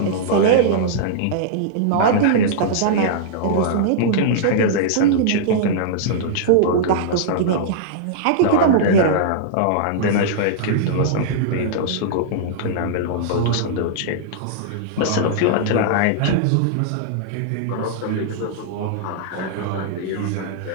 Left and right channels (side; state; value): both; different; correlation -0.02